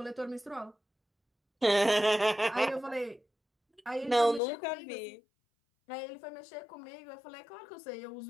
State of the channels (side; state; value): right; drops out; at 4.4 s